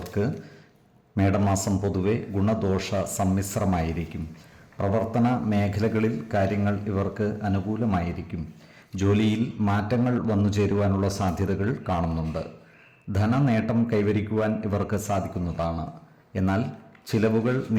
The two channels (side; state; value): both; identical; correlation 1.00